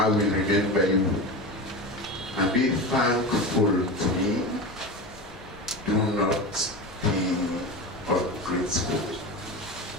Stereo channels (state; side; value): normal; both; correlation 0.26